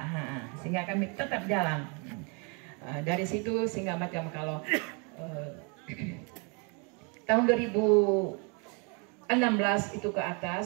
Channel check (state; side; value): quieter; left; 34.2 dB